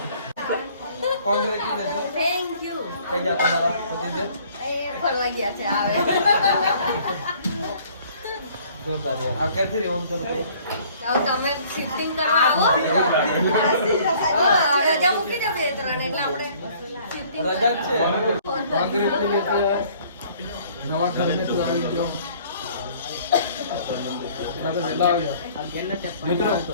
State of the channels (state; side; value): inverted; both; correlation -0.56